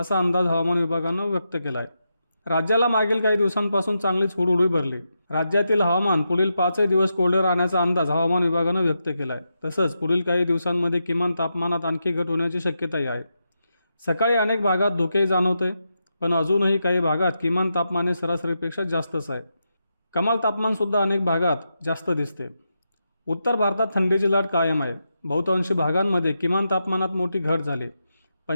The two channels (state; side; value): inverted; both; correlation -0.86